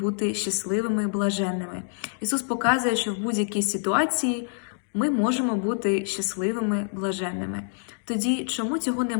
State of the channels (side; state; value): right; silent; digital silence